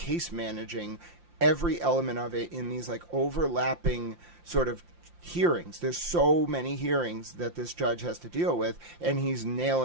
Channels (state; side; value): late; left; 5.7 ms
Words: managing every element of it in these like overlapping sort of hearings. There's so many hearings that this judge has to deal with, and he's